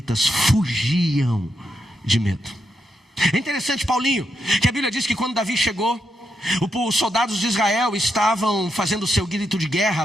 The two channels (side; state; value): both; normal; correlation 0.83